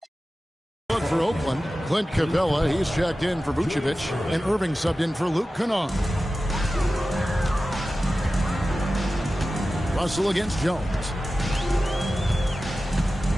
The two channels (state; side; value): normal; both; correlation 0.94